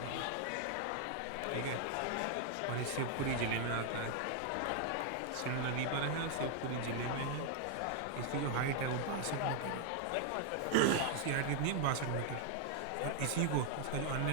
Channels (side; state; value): both; different; correlation 0.00